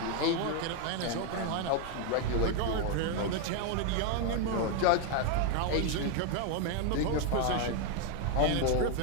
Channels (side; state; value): both; different; correlation 0.01